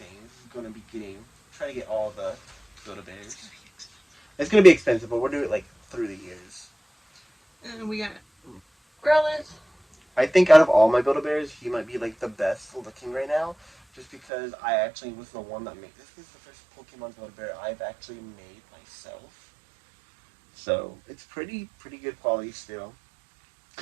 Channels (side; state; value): left; drops out; at 14.2 s